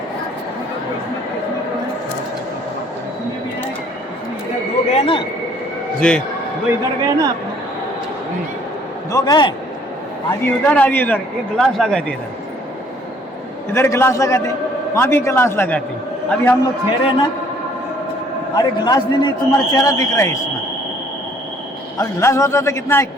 गए ना, जी वो इधर गए ना, दो गए, आधी उधर आधी उधर, एक गिलास लगाते इधर गिलास लगाते, वहाँ भी गिलास लगाते। अभी हम लोग ठहरे ना, अरे गिलास नहीं, तुम्हारा चेहरा दिख रहा है इसमें। अब गिलास होता तो कितना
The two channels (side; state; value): both; normal; correlation 0.60